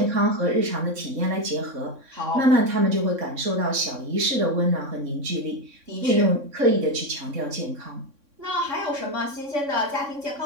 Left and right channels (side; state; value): left; late; 3.6 ms